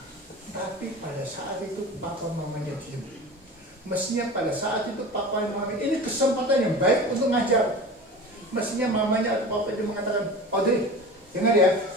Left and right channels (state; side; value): normal; both; correlation 0.34